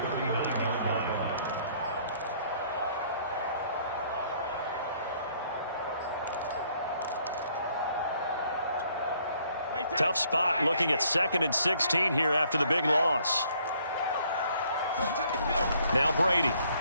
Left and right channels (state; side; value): inverted; both; correlation -0.64